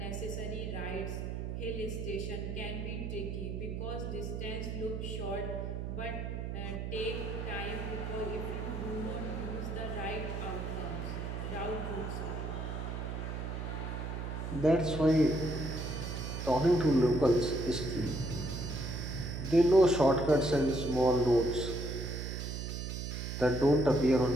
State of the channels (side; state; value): right; noise; hum, 4 dB below the sound